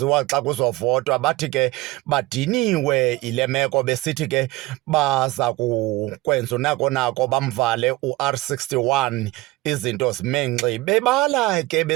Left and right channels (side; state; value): left; quieter; 19.7 dB